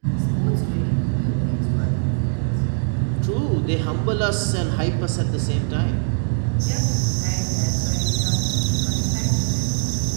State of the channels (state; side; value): silent; left; 64 dB below the other